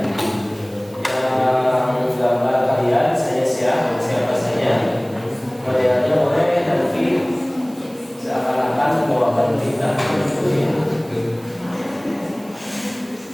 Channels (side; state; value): right; noise; hiss, 26 dB below the sound